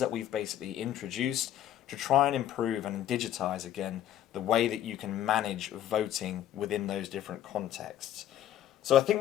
we've basically introduced to try and improve and digitize again the way that you can manage voting within those different contexts. So I think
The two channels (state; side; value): quieter; right; 11.7 dB